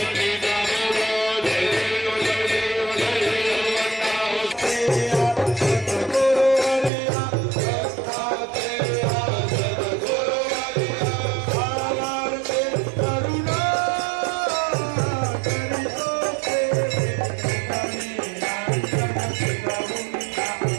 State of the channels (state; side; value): drops out; left; at 6.9 s